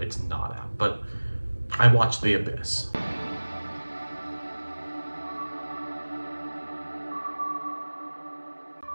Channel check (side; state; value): both; inverted; correlation -1.00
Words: it's not out. But I watched The Abyss.